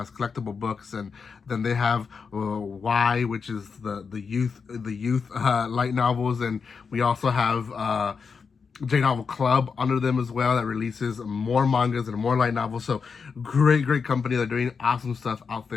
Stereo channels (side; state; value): right; quieter; 5.6 dB